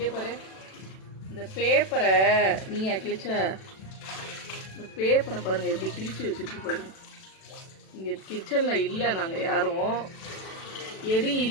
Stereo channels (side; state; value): right; late; 37 ms